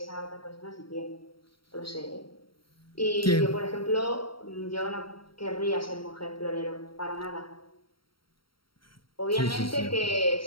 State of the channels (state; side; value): late; right; 0.74 ms